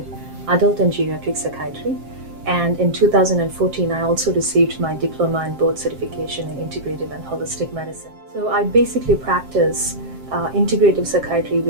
adult and geriatric psychiatry. And in 2014, I also received my diploma and board certification in Integrative and Holistic Medicine. So I basically practice integrative psychiatry,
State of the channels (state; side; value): late; left; 7.5 ms